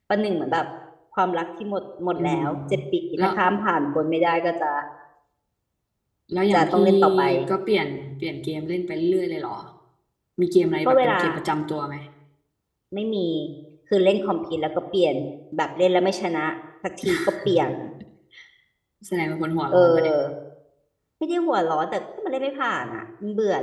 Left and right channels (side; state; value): both; identical; correlation 1.00